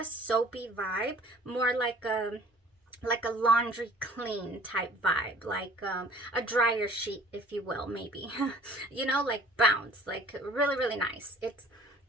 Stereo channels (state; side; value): normal; both; correlation 0.51